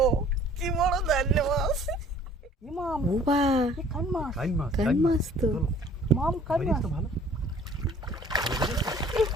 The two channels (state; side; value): normal; both; correlation 0.53